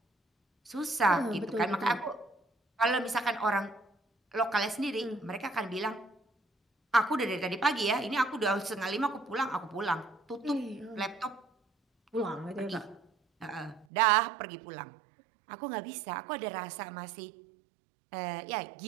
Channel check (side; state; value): left; drops out; at 13.9 s